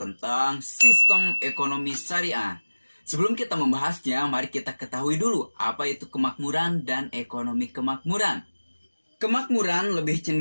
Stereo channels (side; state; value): both; inverted; correlation -1.00